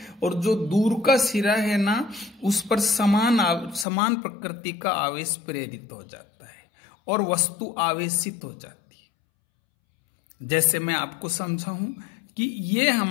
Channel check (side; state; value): right; drops out; at 3.9 s